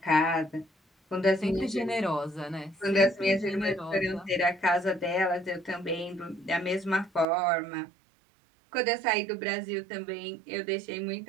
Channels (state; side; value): drops out; left; at 7.2 s